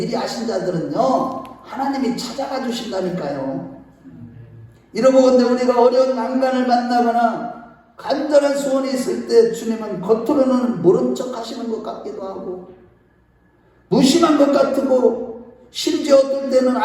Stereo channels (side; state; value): both; identical; correlation 1.00